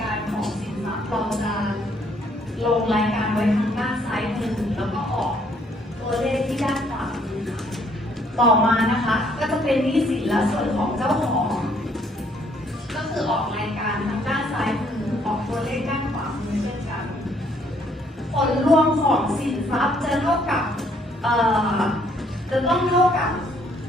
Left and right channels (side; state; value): both; normal; correlation 0.66